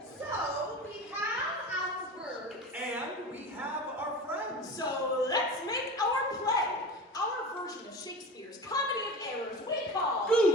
So, we have our birds. And we have our friends. So let's make our play. Our version of Shakespeare's Comedy of Errors we call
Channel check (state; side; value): normal; both; correlation 0.32